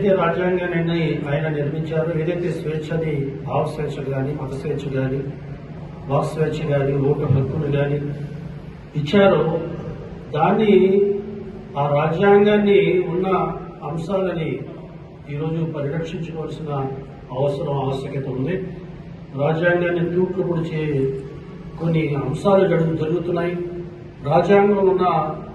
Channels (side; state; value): both; identical; correlation 1.00